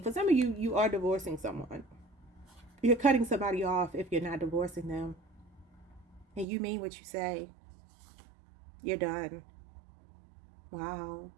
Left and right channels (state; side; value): drops out; left; at 6.5 s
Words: For some of you, you are divorcing someone. You're cutting somebody off if you're not divorcing them. And you mean what you say. You're done. Wow.